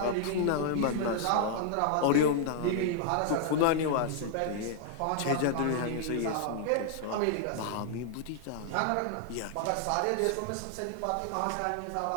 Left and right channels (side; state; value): both; different; correlation 0.00